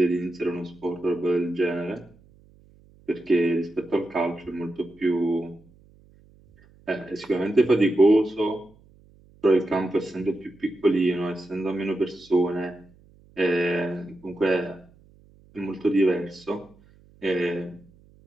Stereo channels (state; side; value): noise; right; hum, 28 dB below the sound